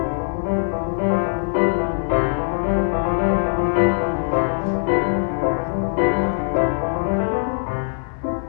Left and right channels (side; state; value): right; silent; digital silence